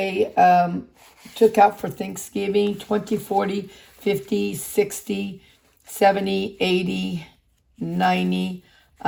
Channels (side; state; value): both; identical; correlation 1.00